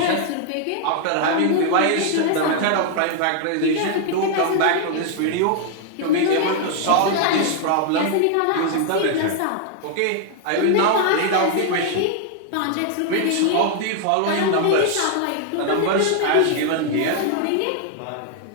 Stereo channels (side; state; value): both; different; correlation 0.00